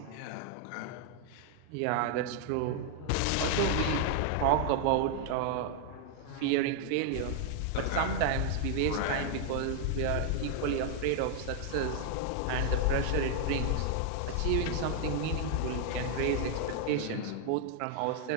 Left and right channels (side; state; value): both; different; correlation 0.00